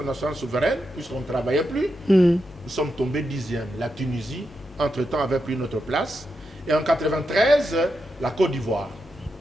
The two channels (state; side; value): normal; both; correlation 0.86